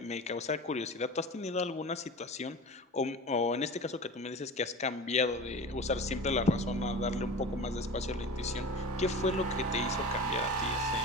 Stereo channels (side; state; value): both; normal; correlation 0.34